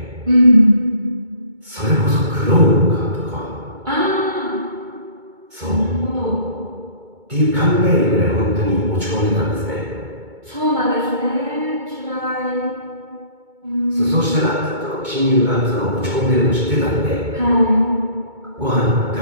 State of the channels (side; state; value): left; late; 2.2 ms